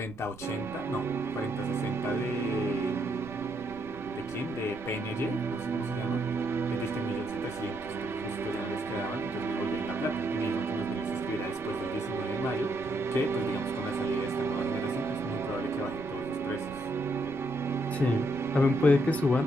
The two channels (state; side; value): noise; right; rumble, 19 dB below the sound